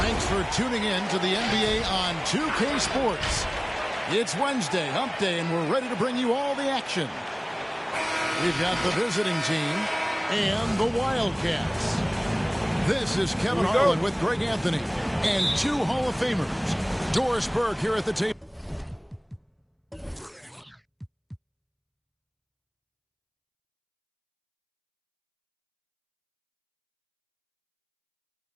Thanks for tuning in to the NBA on 2K Sports. It's Wednesday, hump day, and we're ready to bring you all the action. We've got the visiting team and the Wildcats. This is Kevin Harlan with Greg Anthony and two Hall of Famers. Doris Burke here at the table.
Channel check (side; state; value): both; identical; correlation 1.00